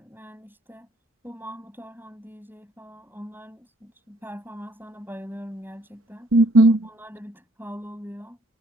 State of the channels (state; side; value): normal; both; correlation 0.63